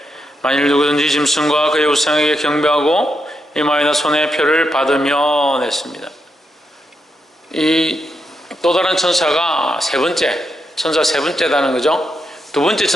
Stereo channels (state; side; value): normal; both; correlation 0.83